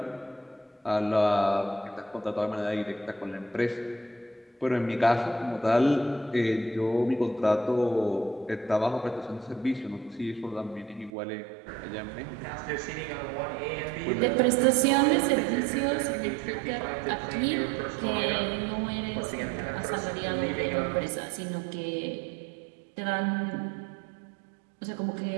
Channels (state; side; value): drops out; left; at 11.1 s